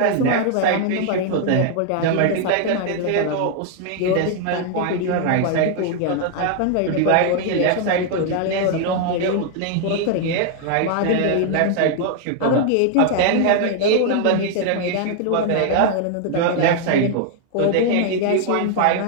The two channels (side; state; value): both; different; correlation 0.00